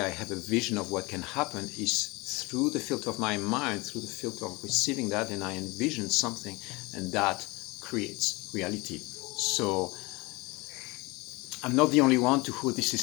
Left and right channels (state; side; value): quieter; right; 24.7 dB